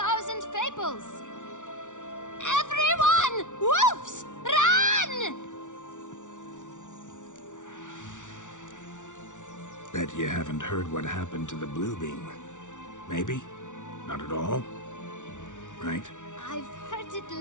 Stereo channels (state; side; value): late; right; 0.86 ms